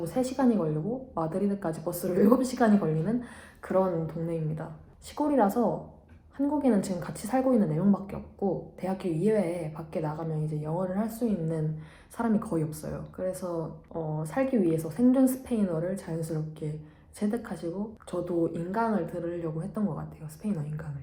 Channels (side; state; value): both; identical; correlation 1.00